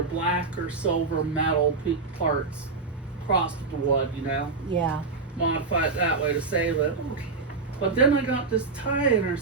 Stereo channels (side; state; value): left; quieter; 4.2 dB